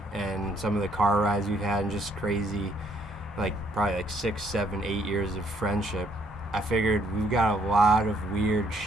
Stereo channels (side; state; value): both; normal; correlation 0.68